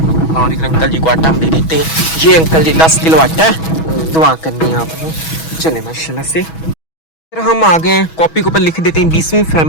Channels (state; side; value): late; right; 6.2 ms